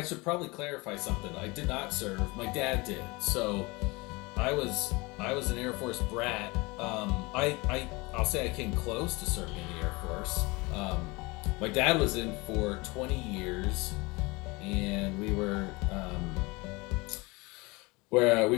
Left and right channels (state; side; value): quieter; right; 24.6 dB